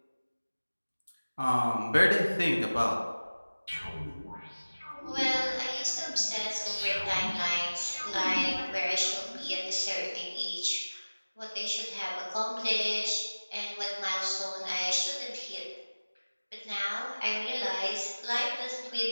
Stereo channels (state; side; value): inverted; both; correlation -1.00